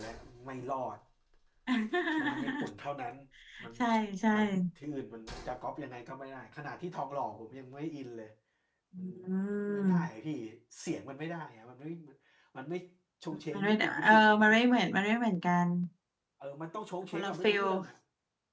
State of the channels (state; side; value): identical; both; correlation 1.00